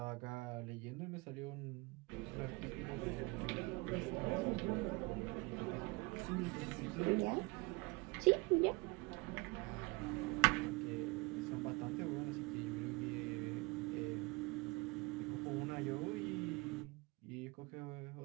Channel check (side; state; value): left; quieter; 26.5 dB